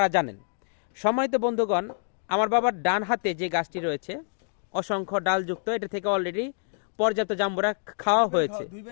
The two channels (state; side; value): silent; right; digital silence